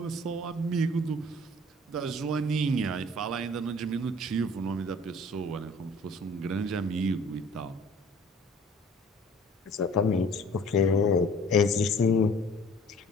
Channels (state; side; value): normal; both; correlation 0.50